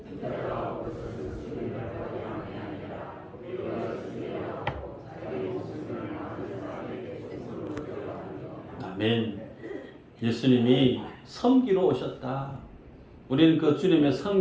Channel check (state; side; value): identical; both; correlation 1.00